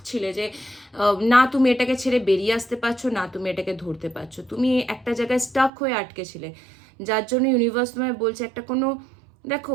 ছিলে যে না তুমি এটাকে ছেড়ে বেরিয়ে আসতে পারছো, না তুমি এটাকে ধরতে পারছো, তুমি একটা জায়গায় স্টাক হয়ে আটকে ছিলে, যার জন্য ইউনিভার্স তোমায় বলছে একটা কোনো,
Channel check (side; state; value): left; drops out; at 5.7 s